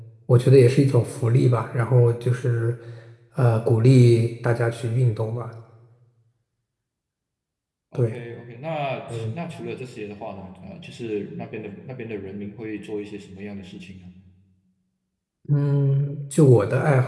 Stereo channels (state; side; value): identical; both; correlation 1.00